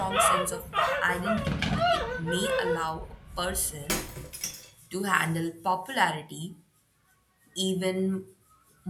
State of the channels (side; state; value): both; identical; correlation 1.00